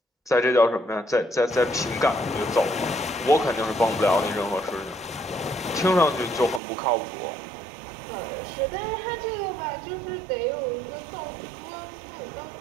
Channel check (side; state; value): left; drops out; at 6.6 s